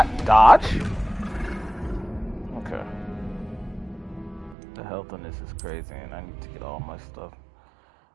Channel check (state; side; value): drops out; left; at 4.5 s